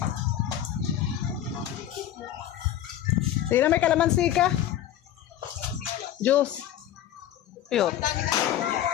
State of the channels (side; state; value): right; quieter; 11.6 dB